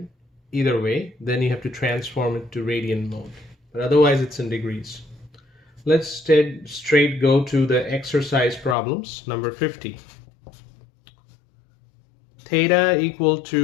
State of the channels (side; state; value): right; drops out; at 8.8 s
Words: either way, then you have to transform it to radian mode. But otherwise it's in degrees. Let's straight go to the exercise problems. Number 50. Theta equal